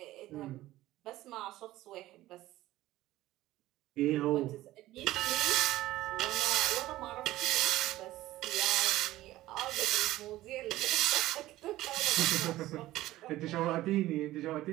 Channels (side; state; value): left; quieter; 16.1 dB